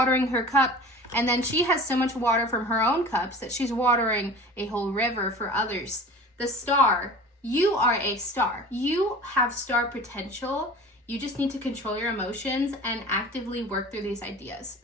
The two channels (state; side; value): normal; both; correlation 0.39